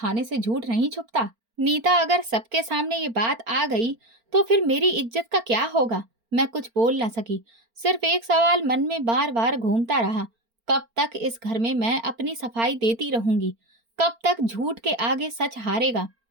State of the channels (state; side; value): late; left; 4.4 ms